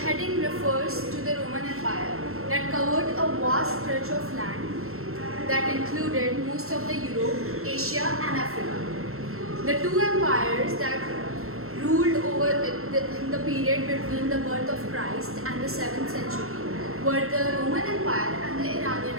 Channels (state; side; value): late; left; 0.62 ms